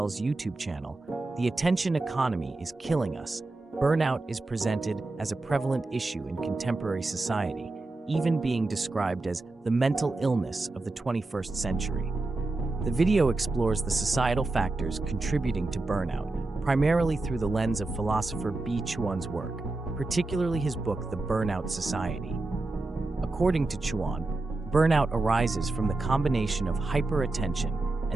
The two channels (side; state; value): left; quieter; 3.1 dB